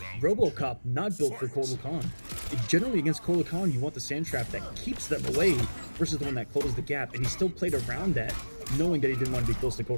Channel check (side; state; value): both; inverted; correlation -1.00